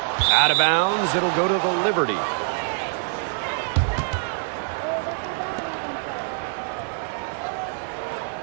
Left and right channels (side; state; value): left; silent; 61 dB below the other